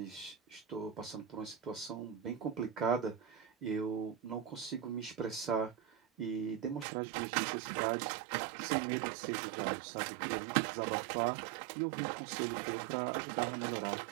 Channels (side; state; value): left; drops out; at 6.9 s